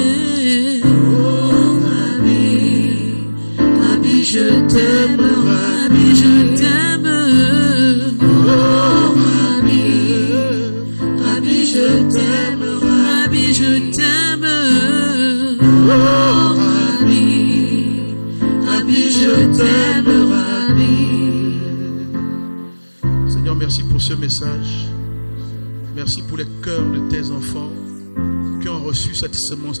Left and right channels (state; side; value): inverted; both; correlation -1.00